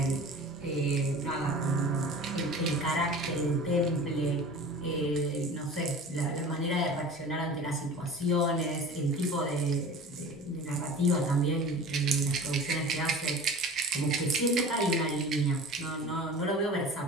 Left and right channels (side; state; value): both; normal; correlation 0.39